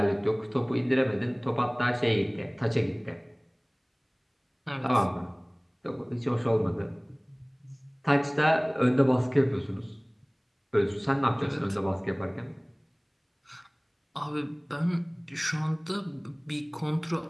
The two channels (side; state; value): both; identical; correlation 1.00